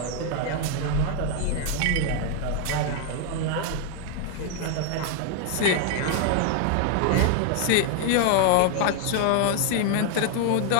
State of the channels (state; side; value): different; both; correlation 0.00